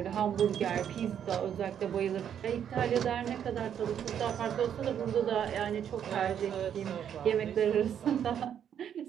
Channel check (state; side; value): quieter; left; 9.0 dB